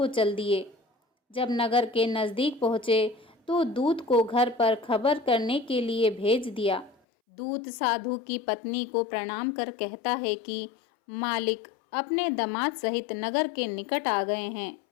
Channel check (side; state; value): right; drops out; at 7.0 s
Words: चल दिए। जब नगर के नज़दीक पहुँचे तो दूत को घर पर खबर करने के लिए भेज दिया। दूत साधु की पत्नी को प्रणाम कर कहता है कि मालिक अपने दामाद सहित नगर के निकट आ गए हैं।